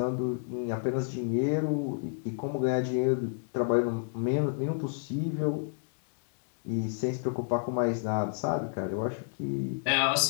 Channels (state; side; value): silent; right; 58 dB below the other